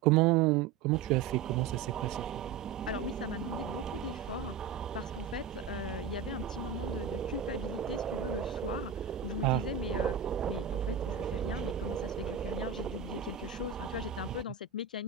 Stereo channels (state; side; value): quieter; left; 7.0 dB